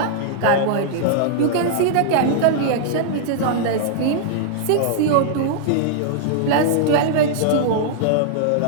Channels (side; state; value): both; different; correlation -0.01